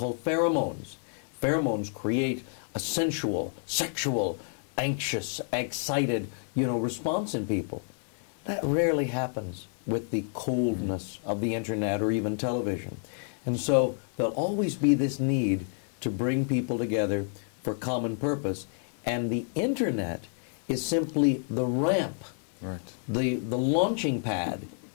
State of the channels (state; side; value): silent; right; 58 dB below the other